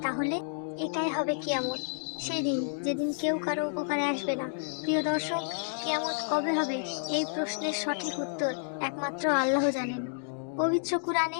তাহলে এটাই হবে কিয়ামত। সেদিন যেদিন কেউ কারো উপকারে আসবে না। প্রিয় দর্শক, কিয়ামত কবে হবে এই প্রশ্নের সঠিক উত্তর একমাত্র আল্লাহ জানেন। পবিত্র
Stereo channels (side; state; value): right; silent; digital silence